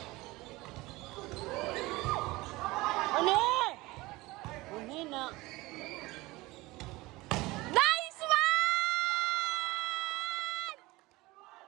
Ano? Uni na. Nice one!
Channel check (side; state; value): left; quieter; 20.9 dB